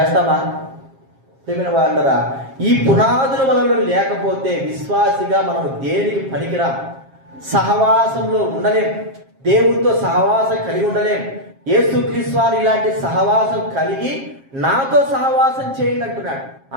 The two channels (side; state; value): left; late; 7.4 ms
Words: ప్రియమైన వాళ్ళరా, ఈ పునాదుల వలన లేకపోతే విశ్వాసిగా మనం దేనికి పనికిరాం. సహవాసంలో ఉండలేం, దేవుడితో సహవాసం కలిగి ఉండలేం. యేసుక్రీస్తు వారు ఇలాంటి సహవాసం కలిగి నాతో సహవాసం చేయండి అంటున్నాడు.